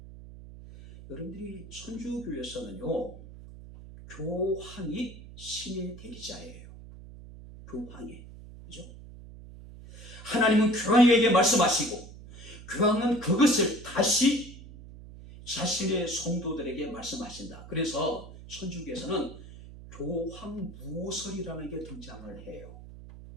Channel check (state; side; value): noise; right; hum, 16 dB below the sound